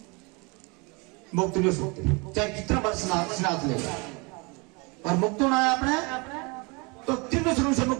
मुक्त नहीं हो सकते, चाहे कितना बार स्नात ले। और मुक्त होना है आपने तो 3 श्रेणी से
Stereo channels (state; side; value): quieter; left; 29.2 dB